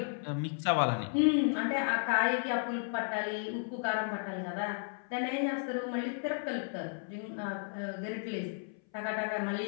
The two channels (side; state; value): right; silent; 55 dB below the other